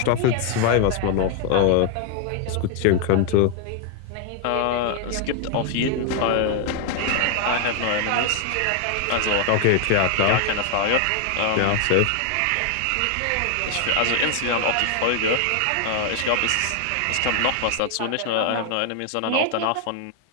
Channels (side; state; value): both; different; correlation 0.00